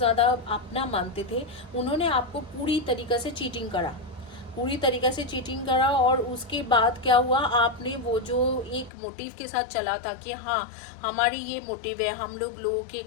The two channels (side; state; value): right; drops out; at 8.9 s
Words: अपना मानते थे, उन्होंने आपको पूरी तरीक़े से चीटिंग करा, पूरी तरीके से चीटिंग करा। और उसके बाद क्या हुआ, आपने वो जो एक मोटिव के साथ चला था कि हाँ हमारी ये मोटिव है, हम लोगों के